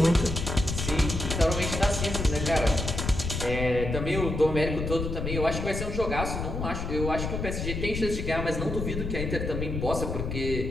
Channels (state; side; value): noise; left; rumble, 4 dB below the sound